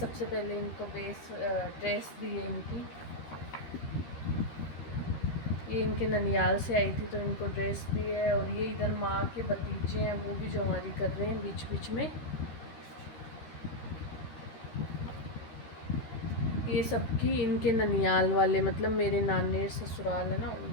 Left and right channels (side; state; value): right; late; 13 ms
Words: पहले इनको ड्रेस दी है इनकी, ये इनके ननियाल से आई थी तो इनको ड्रेस दी है। और ये इधर माँ के भतीजे हैं, वो भी जवारी कर रहे हैं बीच बीच में। ये सबकी इनके ननियाल वाले, मतलब मेरे नानेर ससुराल है ना,